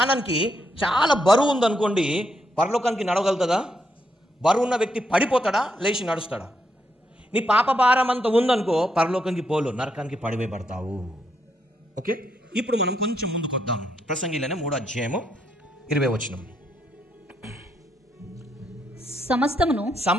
చాలా బరువు ఉందనుకోండి, పరలోకానికి నడవగలుగుతుందా? బరువు ఉన్న వ్యక్తి పడిపోతాడా, లేచి నడుస్తాడా? నీ పాప భారం అంత ఉందనుకో, పరలోకానికి పోలు, నరకానికి పడివేయబడతావు. ఓకే, ఇప్పుడు మనం కొంచెం ముందుకు వద్దాం. ప్రసంగిలోనే 3వ అధ్యాయము 20వ వచనం.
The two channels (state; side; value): normal; both; correlation 0.78